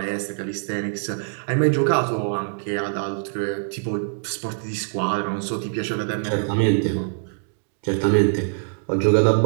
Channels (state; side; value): silent; left; digital silence